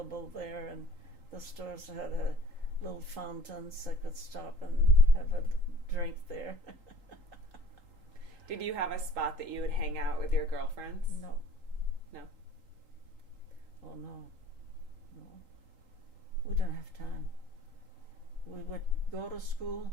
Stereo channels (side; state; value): left; late; 3.8 ms